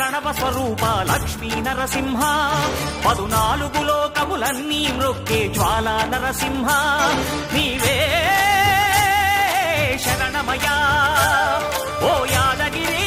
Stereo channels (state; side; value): identical; both; correlation 1.00